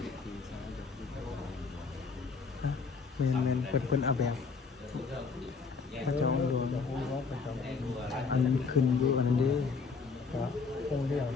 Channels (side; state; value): right; quieter; 4.9 dB